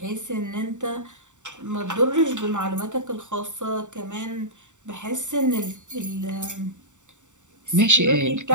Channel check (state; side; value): late; left; 0.85 ms